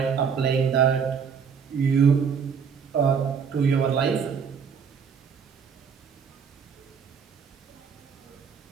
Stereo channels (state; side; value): quieter; left; 6.6 dB